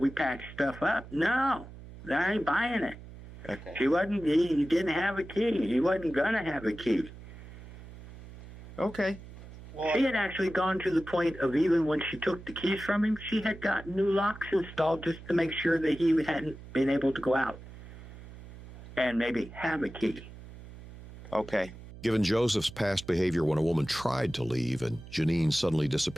patched stuff up. No, I ain't buying it. Okay. He didn't have a key. He wasn't going to have a key. Okay. Well, she had actually gone to the point of even when she took the keys from him, she had gotten new locks installed just to make sure that he hadn't been able to go out and maybe have a key. Okay. Given Joseph's past behavior when a woman tried to leave and Jeneen suddenly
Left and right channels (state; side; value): noise; right; hum, 16 dB below the sound